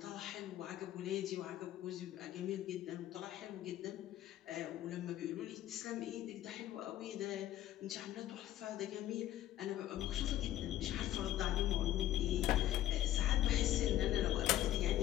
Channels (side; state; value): right; quieter; 13.2 dB